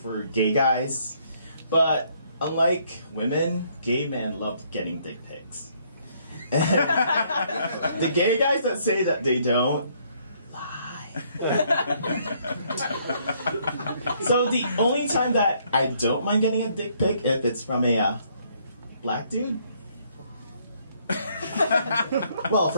gay guys, but unlike women, gay men love getting dick pics. The gay guys that say that they don't, lie. So the only time that I don't mind getting a dick pic if it's from a black dude. Well,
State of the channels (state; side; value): inverted; both; correlation -0.67